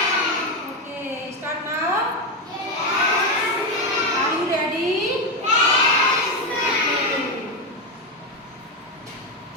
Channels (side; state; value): both; normal; correlation 0.11